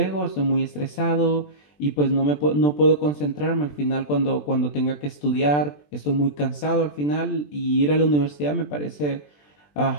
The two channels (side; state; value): right; late; 20 ms